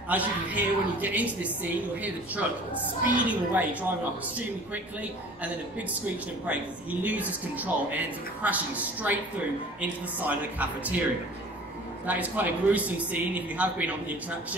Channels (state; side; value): normal; both; correlation 0.45